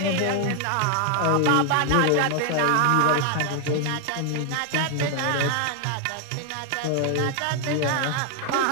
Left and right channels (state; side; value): different; both; correlation 0.00